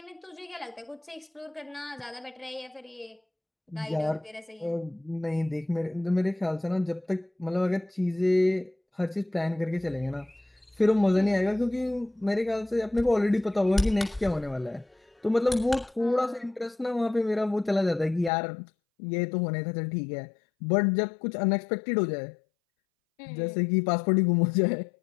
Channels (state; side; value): drops out; right; at 18.3 s